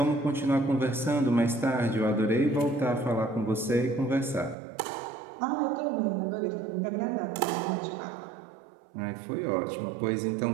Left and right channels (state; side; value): drops out; left; at 4.5 s